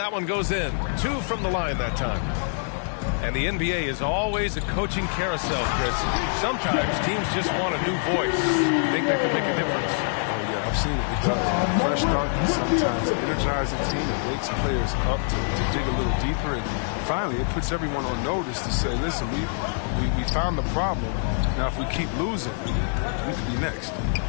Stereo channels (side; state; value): right; silent; 56 dB below the other